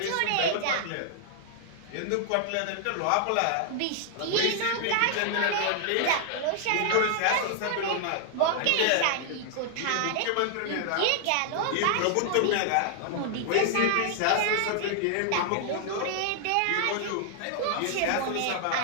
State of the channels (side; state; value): both; different; correlation 0.00